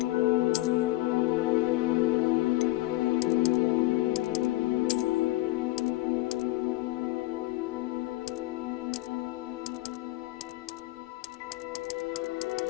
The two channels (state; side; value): quieter; right; 18.7 dB